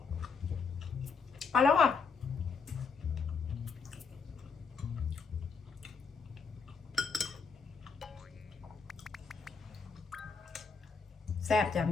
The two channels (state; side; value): quieter; right; 5.1 dB